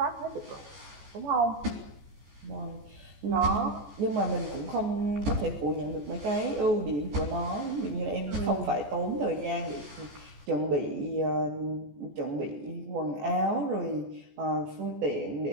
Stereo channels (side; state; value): left; late; 14 ms